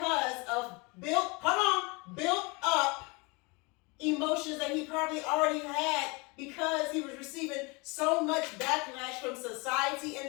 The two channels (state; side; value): quieter; right; 28.1 dB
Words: of built up emotions that he probably already had because he was receiving so much backlash from society